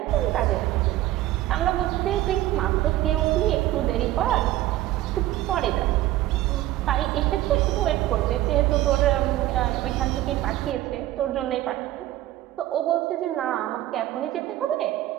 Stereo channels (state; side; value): quieter; left; 15.1 dB